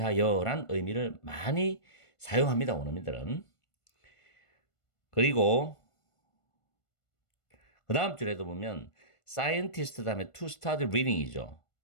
의미를 많이 사용합니다. 원어민들은. 그리고 그 다음 줄에도 보면 scientist 다음에 to start reading이죠.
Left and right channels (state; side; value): late; right; 1.5 ms